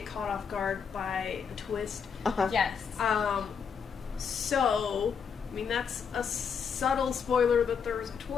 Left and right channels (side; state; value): right; quieter; 6.6 dB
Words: caught off guard by a twist. Yes. So, I mean, that's a subtle spoiler that there was a